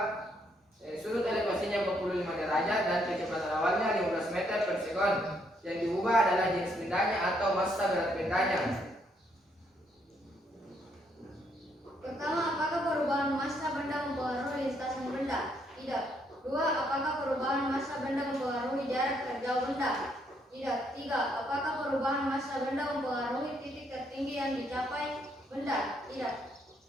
sudut elevasinya 45 derajat dan kecepatan awalnya 15 meter per sekon. Yang diubah adalah jenis bendanya atau massa berat bendanya. Pertama, apakah perubahan massa benda mempengaruhi lintasan benda? Tidak. 2. Apakah perubahan massa benda mempengaruhi jarak terjauh benda? Tidak. 3. Apakah perubahan massa benda mempengaruhi titik tertinggi yang dicapai benda? Tidak.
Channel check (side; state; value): both; normal; correlation 0.72